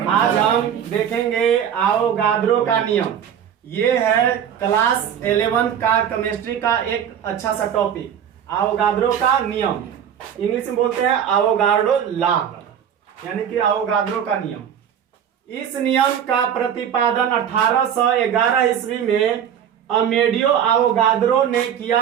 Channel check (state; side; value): quieter; left; 8.9 dB